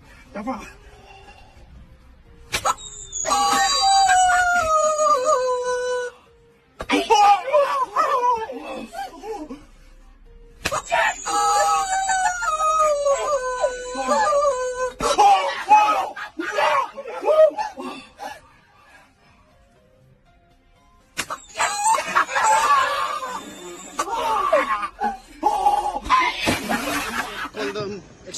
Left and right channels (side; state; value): both; identical; correlation 1.00